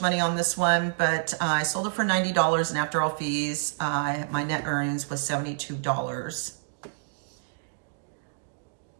money on this one, but I sold it for $90, and after all fees, my net earnings was $72.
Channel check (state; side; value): silent; left; digital silence